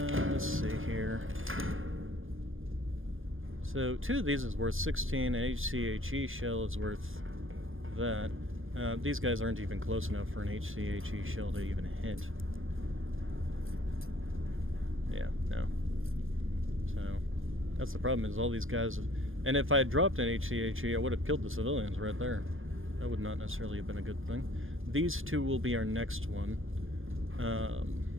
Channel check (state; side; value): late; left; 0.59 ms